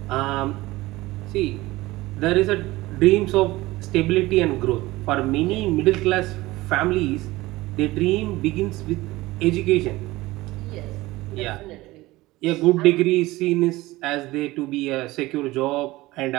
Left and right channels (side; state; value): left; quieter; 19.2 dB